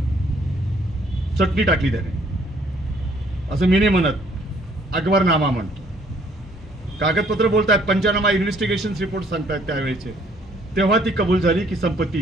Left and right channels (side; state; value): both; normal; correlation 0.63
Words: चटणी टाकली त्याने. असं मी नाही म्हणत, अकबरनामा म्हणतो. कागदपत्र बोलतात, पंचनामा इन्व्हेस्टिगेशन रिपोर्ट सांगतात त्यावेळेचे. तेव्हा ती कबूल झाली की संपत्ती